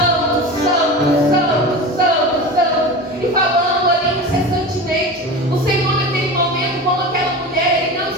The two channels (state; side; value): normal; both; correlation 0.30